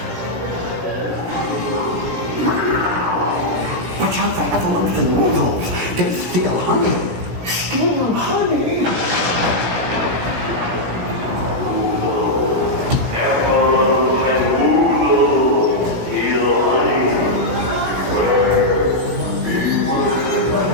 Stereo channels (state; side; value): late; left; 17 ms